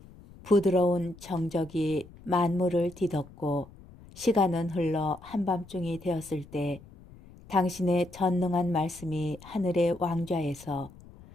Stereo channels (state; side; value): noise; left; rumble, 21 dB below the sound